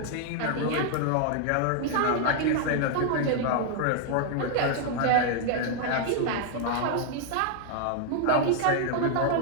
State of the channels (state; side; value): different; both; correlation 0.00